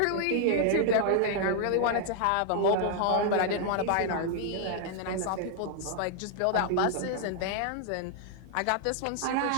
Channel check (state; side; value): different; both; correlation 0.00